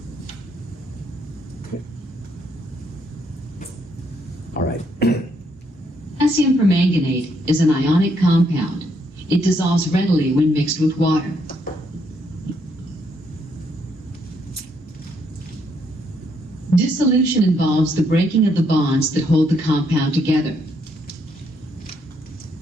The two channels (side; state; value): both; normal; correlation 0.73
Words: Okay. All right. Potassium permanganate is an ionic compound. It dissolves readily when mixed with water. Dissolution involves the breaking of the bonds that hold the compound together.